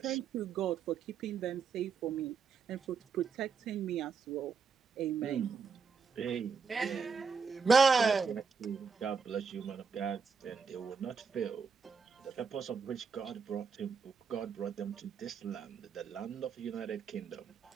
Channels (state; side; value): quieter; left; 5.6 dB